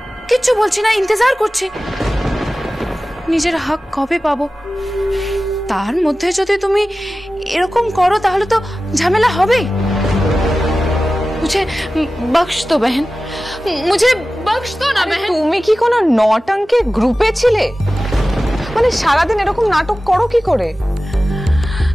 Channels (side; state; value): both; normal; correlation 0.95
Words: কিচ্ছু বলছি না, ইন্তজার করছি। নিজের হক কবে পাবো? তার মধ্যে যদি তুমি এরকম করো তাহলে তো ঝামেলা হবেই। मुझे बख्श दो बहन, मुझे बख्श दो ना बहन। তুমি কি কোনো নটঙ্কের গ্রুপে ছিলে? মানে সারাদিন এরকম নাটক করো কি করে?